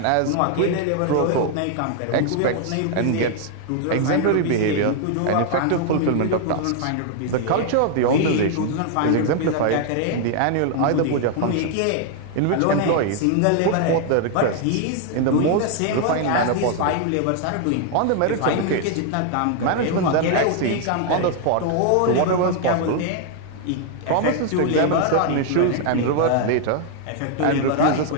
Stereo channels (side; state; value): both; different; correlation 0.00